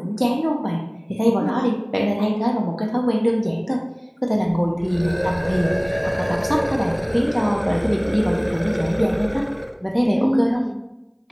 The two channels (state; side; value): identical; both; correlation 1.00